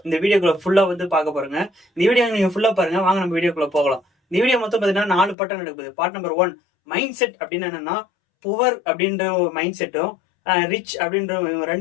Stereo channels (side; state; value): right; drops out; at 5.4 s